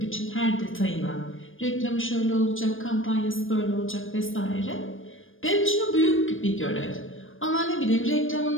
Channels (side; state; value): right; late; 0.59 ms